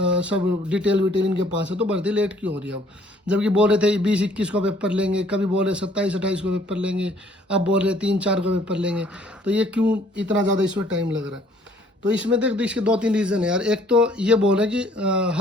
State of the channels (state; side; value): normal; both; correlation 0.60